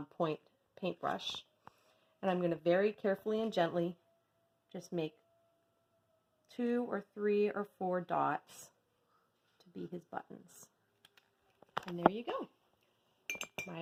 point paintbrush, and I'm going to very carefully and gently just make 2 or 3 or 4 dots to be his buttons. And there you go.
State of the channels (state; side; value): identical; both; correlation 1.00